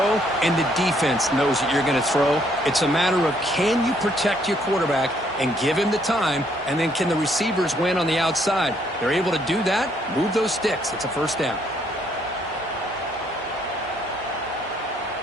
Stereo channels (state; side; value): normal; both; correlation 0.68